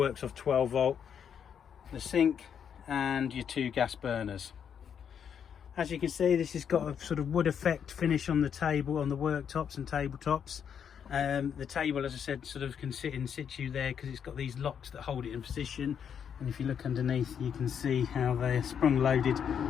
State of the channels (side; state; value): right; quieter; 7.9 dB